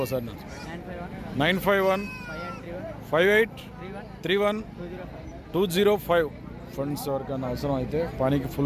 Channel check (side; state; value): both; identical; correlation 1.00